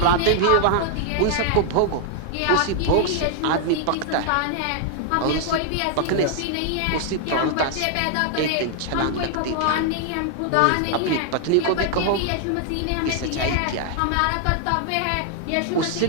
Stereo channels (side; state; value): both; different; correlation 0.00